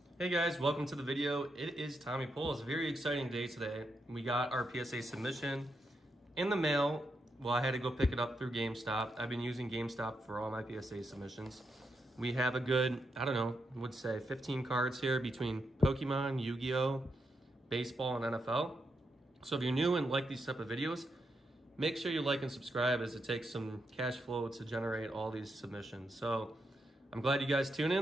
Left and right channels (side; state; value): both; normal; correlation 0.83